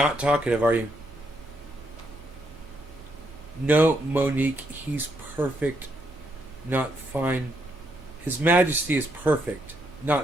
talkative, are you? No, Monique, he's perfect, not fine. His Majesty is perfect,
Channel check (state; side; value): normal; both; correlation 0.76